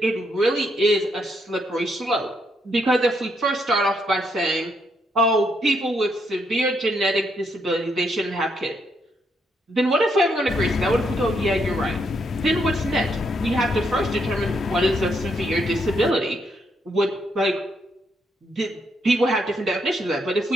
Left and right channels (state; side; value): normal; both; correlation 0.76